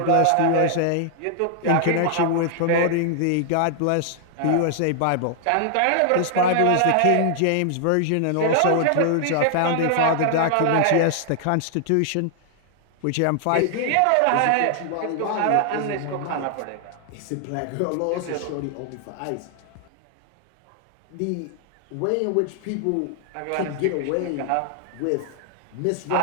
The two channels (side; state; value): both; different; correlation 0.00